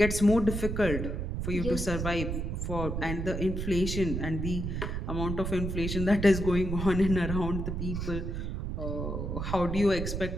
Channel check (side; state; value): right; noise; rumble, 3 dB below the sound